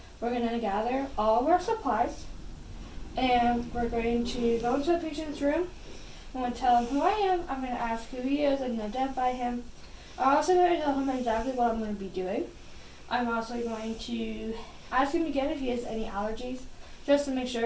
we're going to gather all of our supplies and we're going to go into the patient's room. I'm going to tell him who I am. I'm going to ask who he is and identify him. I'm also going to tell him exactly what I'm going to be doing. I'm also going to ask him again if he has any allergies, just to make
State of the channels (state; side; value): identical; both; correlation 1.00